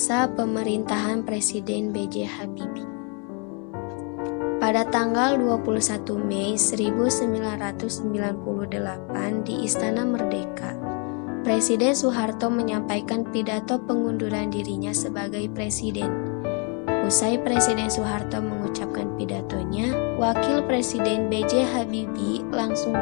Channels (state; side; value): quieter; right; 36.3 dB